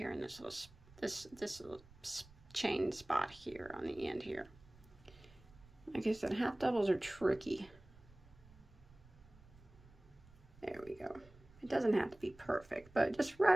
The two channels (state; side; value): noise; right; rumble, 24 dB below the sound